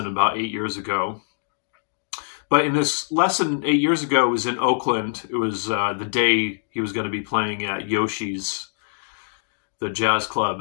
about 8 years ago. But in this lesson 8 years ago, it was in Oakland. It was the day he was going to be playing at Yoshi's, the jazz club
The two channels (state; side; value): silent; right; digital silence